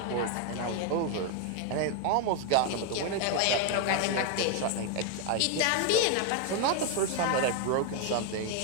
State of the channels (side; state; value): both; different; correlation 0.01